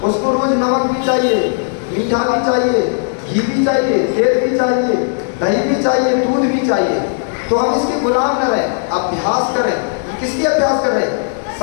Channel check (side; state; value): right; silent; 60 dB below the other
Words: उसको रोज नमक भी चाहिए, मीठा भी चाहिए, घी भी चाहिए, तेल भी चाहिए, दही भी चाहिए, दूध भी चाहिए। तो हम इसके गुलाम न रहे, अभ्यास करें। किसकी अभ्यास कर रहे?